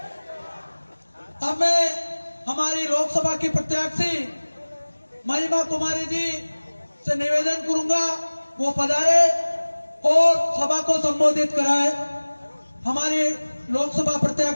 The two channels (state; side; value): inverted; both; correlation -1.00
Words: अब मैं हमारी लोकसभा की प्रत्याशी महिमा कुमारी जी से निवेदन करूंगा वो पधारे और सभा को संबोधित कराए। हमारी लोकसभा